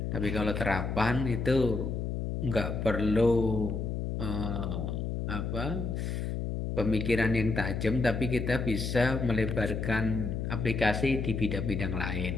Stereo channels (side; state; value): left; noise; hum, 2 dB below the sound